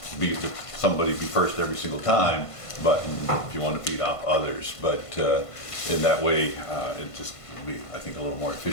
somebody be first every single time, but if you want to feed off others. But in that way, it just will be, I think, a little more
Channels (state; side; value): late; right; 1.5 ms